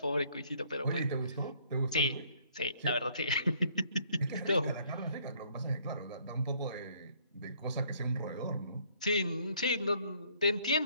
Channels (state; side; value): inverted; both; correlation -0.63